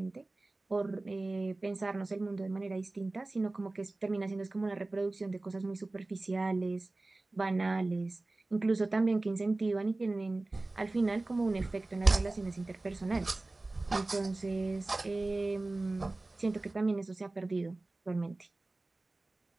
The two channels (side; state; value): left; quieter; 3.0 dB